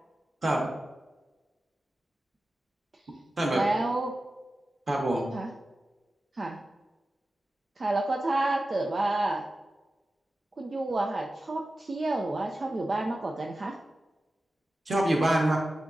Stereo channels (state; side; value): normal; both; correlation 0.94